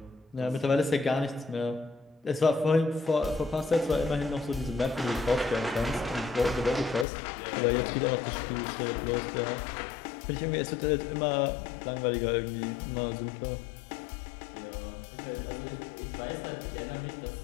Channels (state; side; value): drops out; right; at 7.1 s